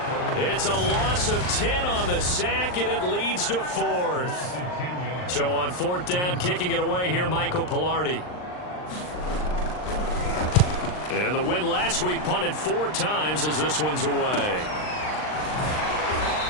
It's a loss of 10 on the sack, and it leads to 4th. So on 4th down, kicking it away here, Michael Pilardi. And the win last week punted 4 times as this one's away.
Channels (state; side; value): late; right; 39 ms